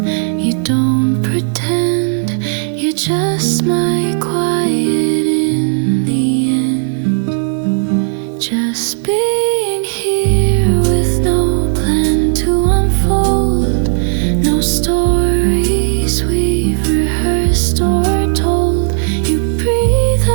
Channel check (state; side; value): silent; left; digital silence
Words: you don't pretend, you're just my quiet in the end. Just being here with no plan to unfold, no stories we've rehearsed or told. You breathe,